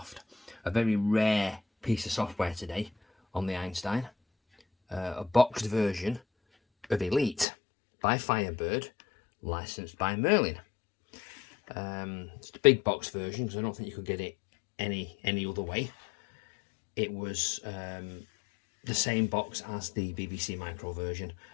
A very rare piece of software today on the Einstein. A boxed version of Elite by Firebird, licensed by Merlin. It's the big box version because I don't think you could get it any other way. It was the same box as the BBC Micro version.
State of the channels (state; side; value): drops out; right; at 7.5 s